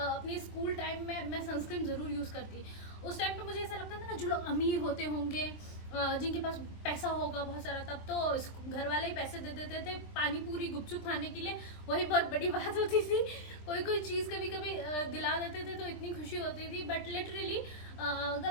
स्कूल टाइम में मैं सनस्क्रीन ज़रूर यूज़ करती। उस टाइम पे मुझे ऐसा लगता था ना जो लोग अमीर होते होंगे जिनके पास पैसा होगा बहुत सारा, तब तो घर वाले ही पैसे दे देते थे पानी पूरी गुपचुप खाने के लिए, वही बहुत बड़ी बात होती थी। कोई चीज़ कभी कभी दिला देते थे तो इतनी खुशी होती थी। बट लिटरली अगर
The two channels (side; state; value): right; late; 23 ms